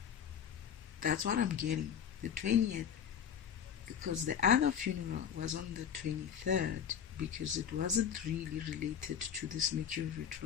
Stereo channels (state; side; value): quieter; right; 8.3 dB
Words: That's what I'm getting. The 20th. Because the other funeral was on the 23rd, because it wasn't really related to this Mercury